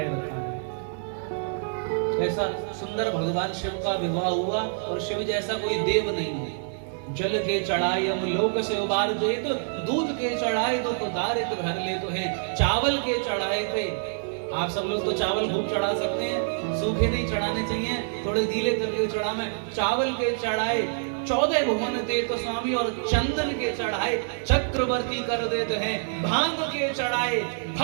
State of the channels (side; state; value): left; silent; digital silence